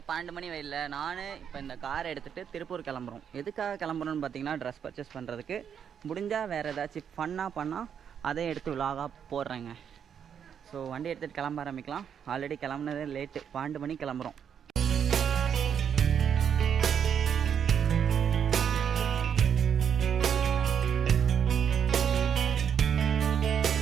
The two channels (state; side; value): quieter; left; 8.0 dB